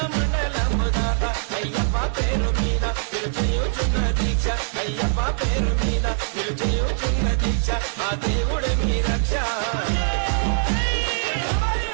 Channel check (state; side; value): silent; left; digital silence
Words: మండలము దాకా అయ్యప్ప పేరు మీద మీరు చేయుచున్న దీక్ష అయ్యప్ప పేరు మీద మీరు చేయుచున్న దీక్ష ఆ దేవుడు